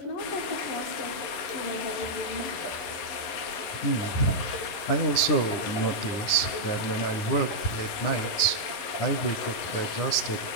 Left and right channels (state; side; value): late; right; 11 ms